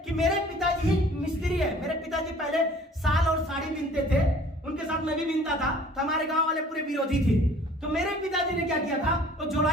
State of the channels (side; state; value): both; normal; correlation 0.51